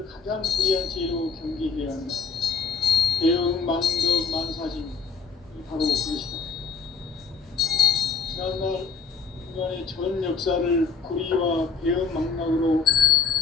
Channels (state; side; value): quieter; right; 5.2 dB